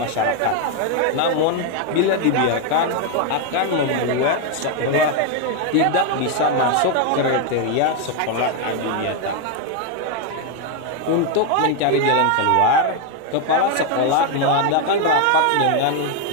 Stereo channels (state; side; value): different; both; correlation 0.01